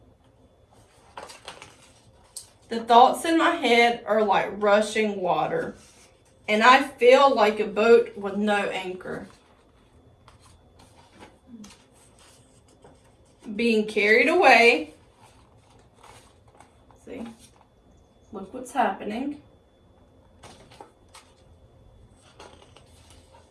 The thoughts in my head are like rushing water, and I feel like a boat with no anchor, being carried away. See, look what's happening.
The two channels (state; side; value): identical; both; correlation 1.00